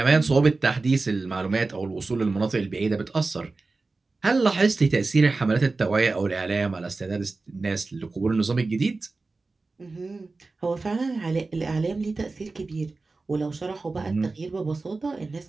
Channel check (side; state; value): left; quieter; 3.7 dB